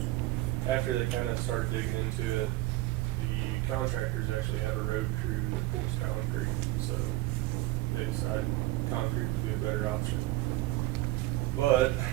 after they kind of started digging into it, the contractors actually have a road crew that pours concrete, so they decided concrete would be a better option. But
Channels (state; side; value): quieter; left; 17.9 dB